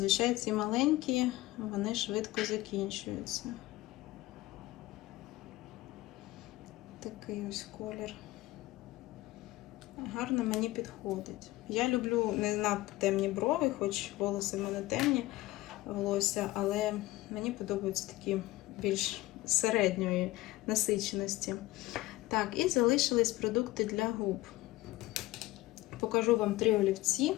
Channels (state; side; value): quieter; right; 18.2 dB